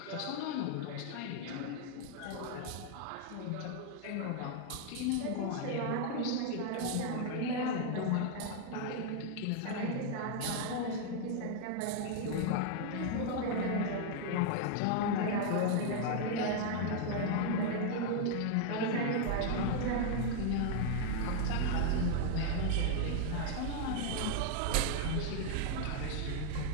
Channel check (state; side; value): different; both; correlation 0.00